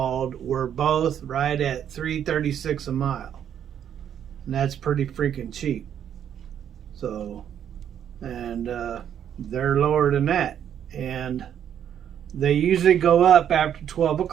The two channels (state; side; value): quieter; left; 9.4 dB